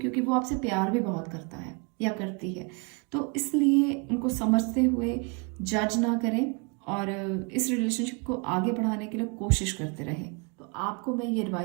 वो आपसे प्यार भी बहुत करता है या करती है। तो इसलिए उनको समझते हुए जज ना करें और इस रिलेशनशिप को आगे बढ़ाने के लिए कोशिश करते रहें। तो आपको मैं ये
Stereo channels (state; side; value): quieter; left; 32.8 dB